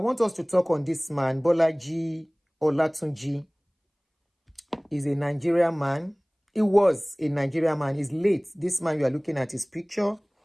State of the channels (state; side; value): identical; both; correlation 1.00